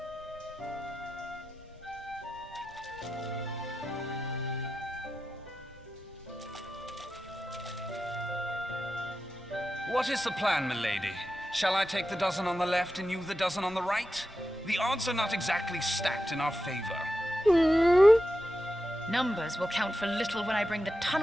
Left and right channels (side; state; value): both; normal; correlation 0.91